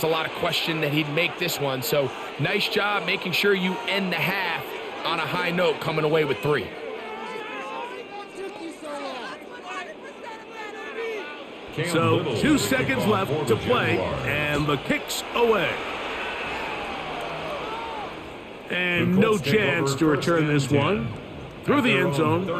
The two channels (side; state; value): both; identical; correlation 1.00